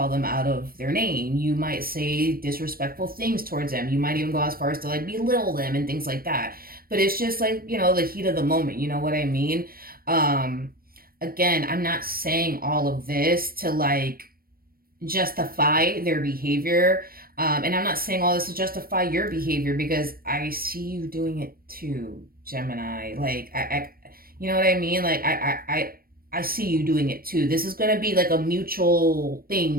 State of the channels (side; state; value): left; late; 0.43 ms